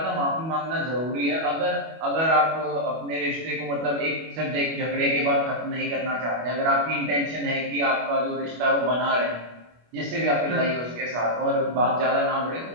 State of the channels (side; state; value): left; late; 25 ms